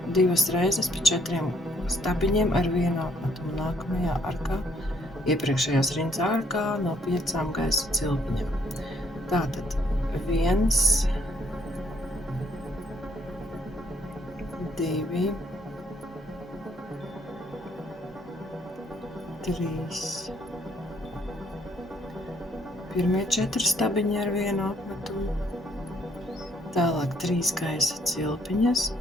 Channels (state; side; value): normal; both; correlation 0.68